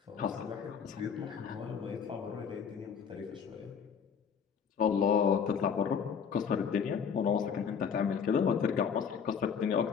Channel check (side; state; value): right; quieter; 6.9 dB